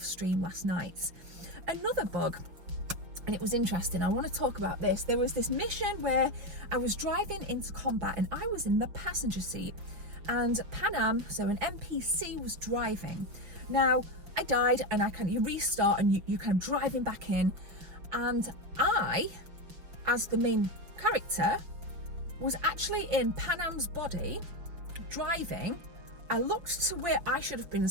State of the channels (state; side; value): late; left; 6.1 ms